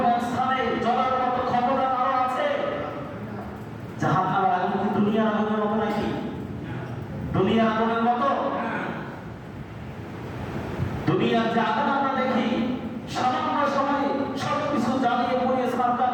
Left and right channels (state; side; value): identical; both; correlation 1.00